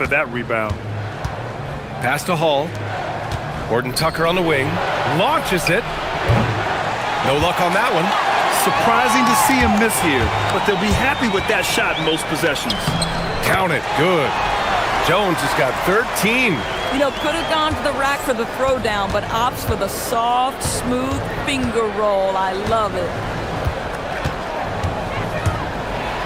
that rebound. Pass to Hall. Horton-Tucker on the wing. Launches it. No luck on that one. Surprising to see him miss here, but they'll be happy with that shot in most possessions. Count it. Good. Jones has got 13. You know, could have gone to the rack for the throwdown, but opts for the soft, smooth finger roll. I love it.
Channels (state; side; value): identical; both; correlation 1.00